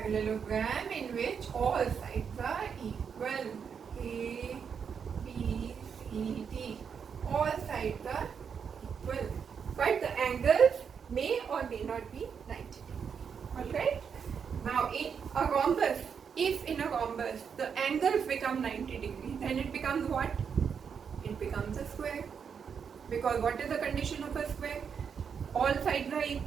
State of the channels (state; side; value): quieter; left; 6.8 dB